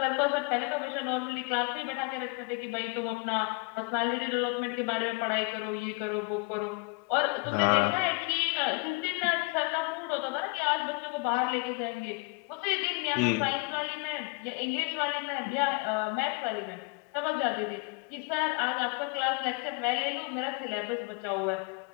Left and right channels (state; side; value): quieter; right; 28.9 dB